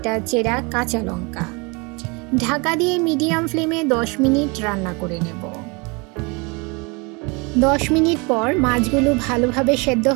চেরা কাঁচা লঙ্কা। ঢাকা দিয়ে মিডিয়াম ফ্লেমে 10 মিনিট রান্না করে নেব। 10 মিনিট পর মাছগুলো ভালোভাবে সেদ্ধ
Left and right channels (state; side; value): quieter; left; 29.3 dB